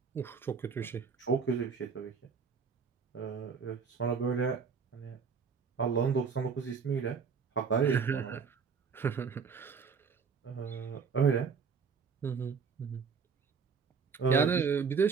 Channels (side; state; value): left; quieter; 5.7 dB